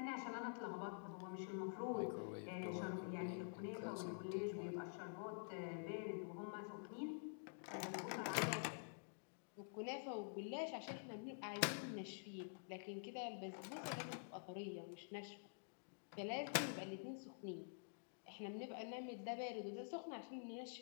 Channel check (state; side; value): silent; right; digital silence